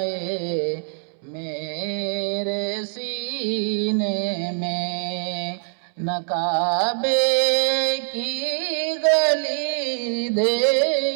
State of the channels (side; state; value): left; silent; 63 dB below the other